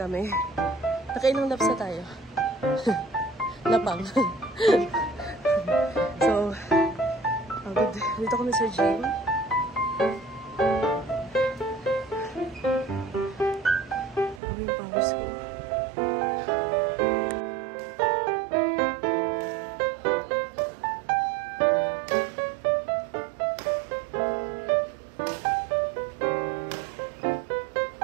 Nakailang laps na tayo. Lapang. So, dito kami sa gym. Ano yung powers ko?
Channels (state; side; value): drops out; left; at 14.4 s